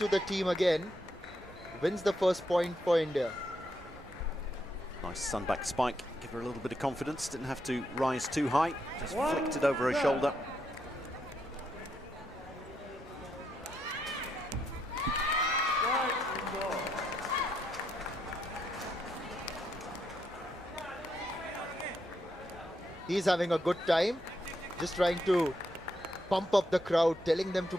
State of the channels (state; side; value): normal; both; correlation 0.79